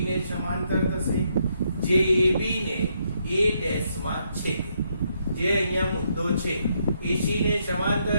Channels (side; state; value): both; inverted; correlation -0.76